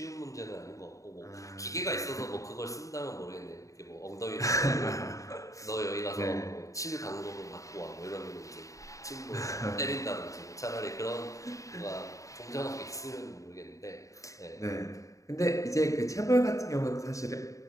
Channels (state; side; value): late; right; 0.16 ms